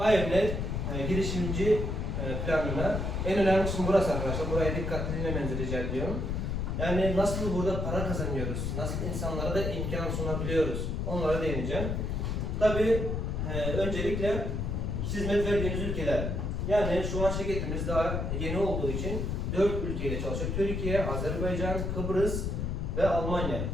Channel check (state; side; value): noise; left; rumble, 1 dB below the sound